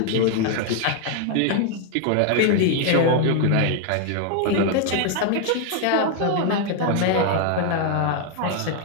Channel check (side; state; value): both; different; correlation 0.00